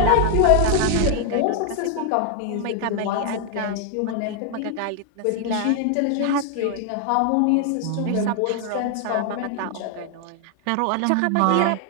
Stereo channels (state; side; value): different; both; correlation 0.00